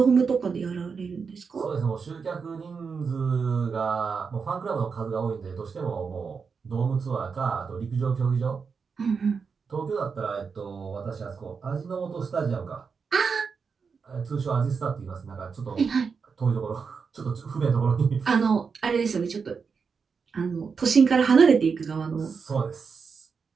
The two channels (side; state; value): left; quieter; 5.5 dB